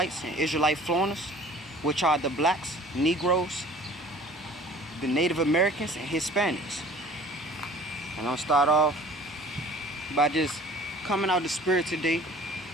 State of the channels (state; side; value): normal; both; correlation 0.48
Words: and Israelite foreigners, which are the blacks, Negroes, the Native Americans, and Hispanics. And I'll start off by just coming out the spirit today